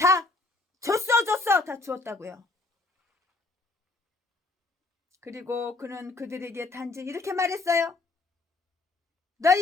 줬어 다 주었다고요. 그리고 그는 그들에게 단지 이렇게 말했어요.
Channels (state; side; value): quieter; right; 3.3 dB